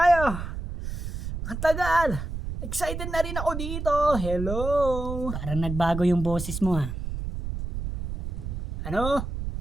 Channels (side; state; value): right; noise; rumble, 5 dB below the sound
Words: Ang tagal. Excited na rin ako dito. Hello. Parang nagbago yung boses mo ah. Ano?